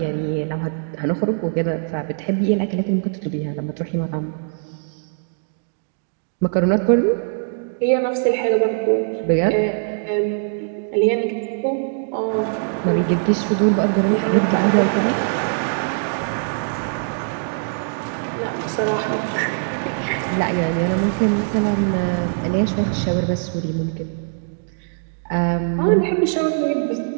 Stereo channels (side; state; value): left; silent; digital silence